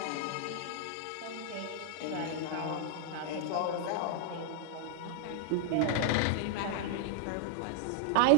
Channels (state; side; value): different; both; correlation -0.01